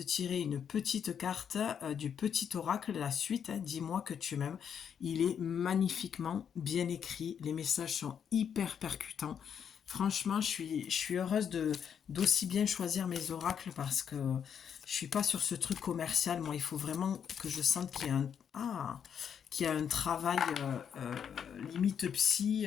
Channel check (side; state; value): right; quieter; 7.9 dB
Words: tirer une petite carte du petit oracle, la suite, hein, Dis-moi que tu m'aimes. Il est magnifiquement bien écrit. Les messages sont hyper percutants. Franchement, je suis heureuse d'aussi bien choisir mes oracles parce que je suis pas sur ce truc commercial. Moi, il faut vraiment que je sente qu'il y a un travail limite psy,